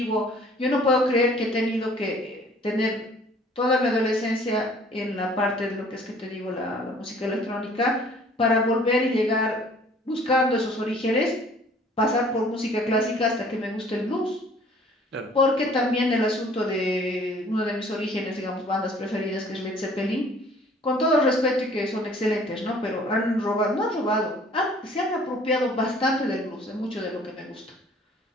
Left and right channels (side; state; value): both; normal; correlation 0.54